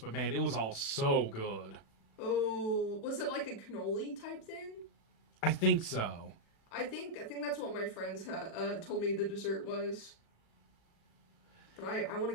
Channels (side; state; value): right; late; 36 ms